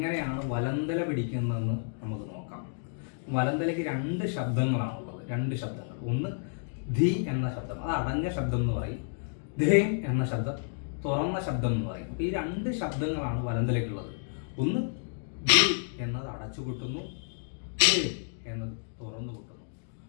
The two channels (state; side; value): silent; right; digital silence